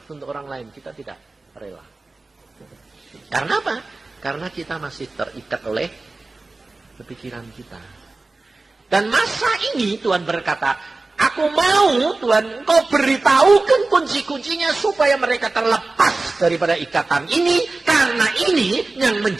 untuk orang lain, kita tidak rela. Karena apa? Karena kita masih terikat oleh kepikiran kita. Dan masa ini Tuhan berkata, aku mau Tuhan kau beritahukan kunci-kuncinya supaya mereka terlepas daripada ikatan ini. Karena ini yang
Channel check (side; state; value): left; quieter; 3.4 dB